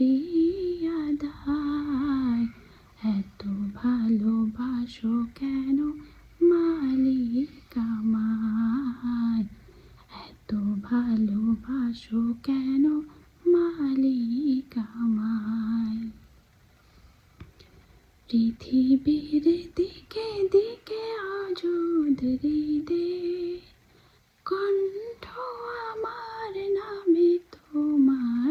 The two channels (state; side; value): identical; both; correlation 1.00